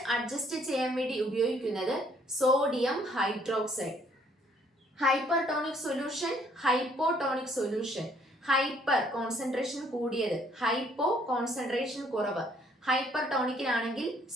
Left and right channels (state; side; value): normal; both; correlation 0.64